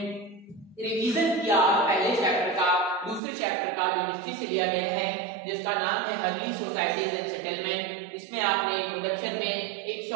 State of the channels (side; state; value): left; drops out; at 3.2 s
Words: रिवीजन किया पहले चैप्टर का, दूसरे चैप्टर का जो हिस्ट्री से लिया गया है जिसका नाम है अर्ली सोसाइटीज एंड सेटलमेंट। इसमें आपने इंट्रोडक्शन में एक